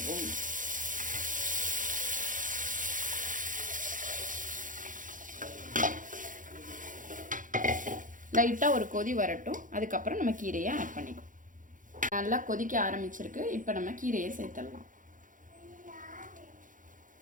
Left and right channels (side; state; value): left; late; 0.38 ms